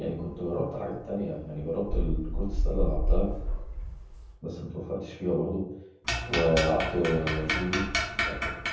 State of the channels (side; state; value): both; identical; correlation 1.00